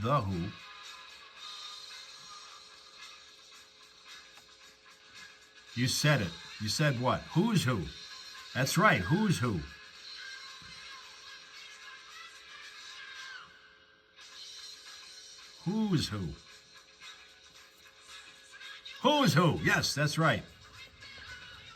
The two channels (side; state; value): both; identical; correlation 1.00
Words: The Who. You said it. You said what? Who's Who? That's right. Who's Who? Who's Who? Who's Who? Yes, that's right.